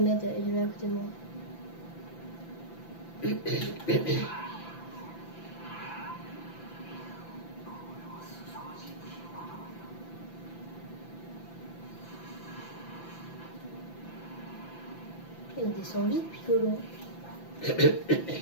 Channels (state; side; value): late; right; 5.9 ms